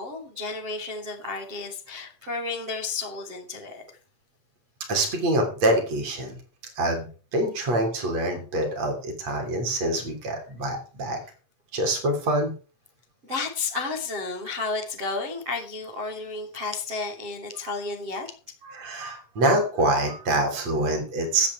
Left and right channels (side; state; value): left; late; 8.3 ms